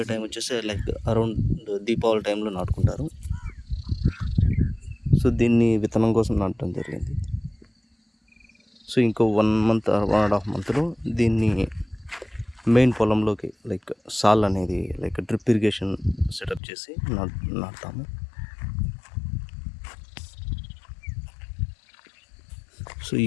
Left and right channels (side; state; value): right; drops out; at 16.6 s